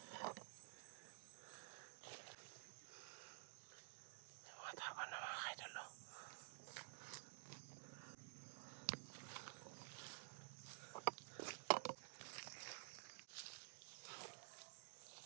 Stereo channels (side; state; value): left; silent; digital silence